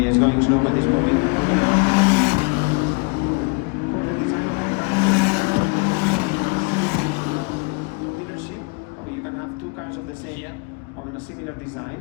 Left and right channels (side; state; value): right; quieter; 32.0 dB